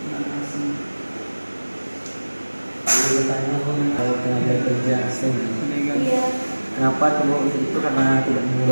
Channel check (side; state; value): both; inverted; correlation -1.00